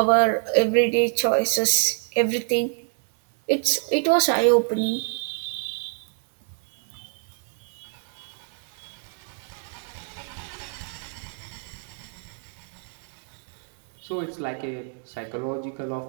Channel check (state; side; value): silent; left; 57 dB below the other